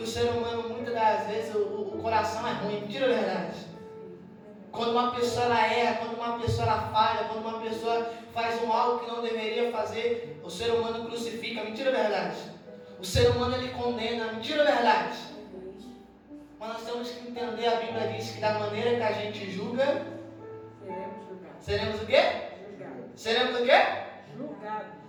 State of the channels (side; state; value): both; identical; correlation 1.00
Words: o ser humano, muitas das vezes, o coração é ruim. Mentira, é verdade? Quando uma pessoa ela erra, quando uma pessoa ela falha, quando uma pessoa faz algo que não deveria fazer, o ser humano crucifica. Mentira, é verdade? O ser humano ele condena. Mentira, é verdade? Mas nós temos que entender, a Bíblia diz que da maneira que a gente julga, seremos o quê? Seremos o quê? Julgados.